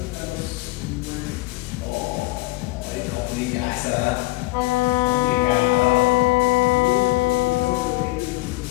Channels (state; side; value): quieter; right; 20.6 dB